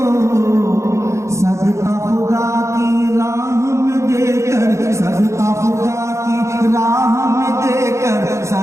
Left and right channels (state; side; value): late; left; 0.14 ms